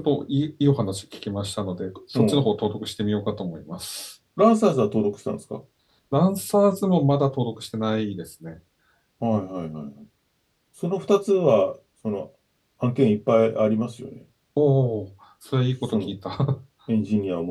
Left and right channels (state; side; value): identical; both; correlation 1.00